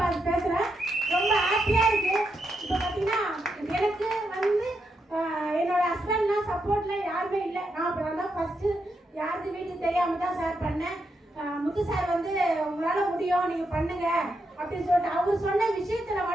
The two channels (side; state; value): both; normal; correlation 0.83